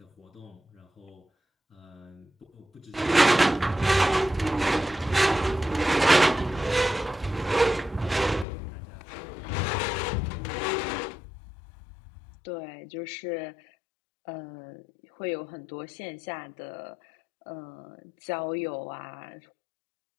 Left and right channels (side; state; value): right; drops out; at 8.5 s